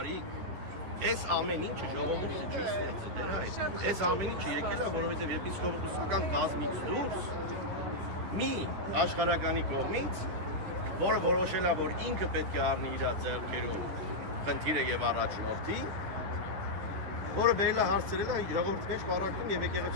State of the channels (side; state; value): left; late; 10 ms